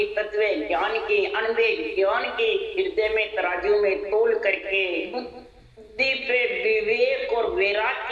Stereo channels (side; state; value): both; identical; correlation 1.00